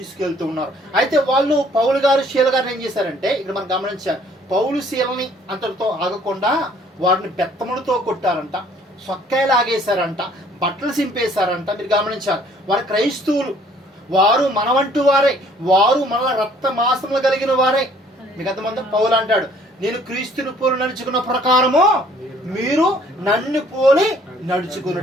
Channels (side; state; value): both; normal; correlation 0.59